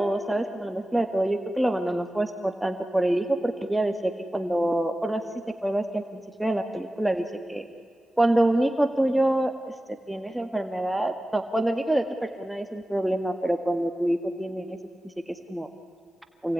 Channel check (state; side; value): normal; both; correlation 0.95